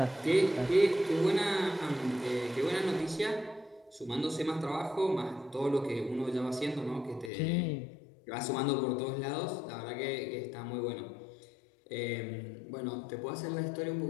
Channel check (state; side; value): drops out; right; at 7.3 s